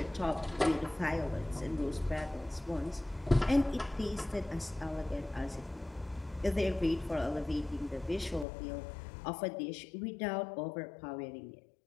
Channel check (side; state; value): right; drops out; at 8.5 s